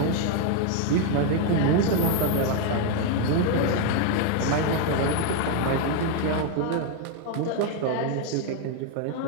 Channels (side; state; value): both; different; correlation 0.00